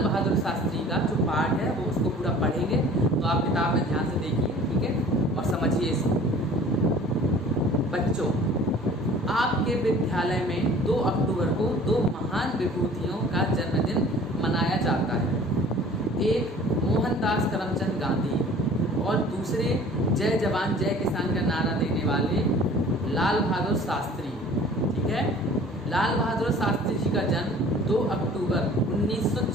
बहादुर शास्त्री का जो पार्ट है वो उसको पूरा पढ़ेंगे। तो आप किताब में ध्यान से देखिए, ठीक है, और समझिए इसको। बच्चों, आपके विद्यालय में 2 अक्टूबर को 2 महान विभूतियों का जन्मदिन मनाया जाता है। एक मोहनदास करमचंद गांधी और दूसरे जय जवान जय किसान का नारा देने वाले लाल बहादुर शास्त्री। ठीक है, लाल बहादुर शास्त्री जी का जन्म 2 अक्टूबर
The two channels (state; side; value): normal; both; correlation 0.48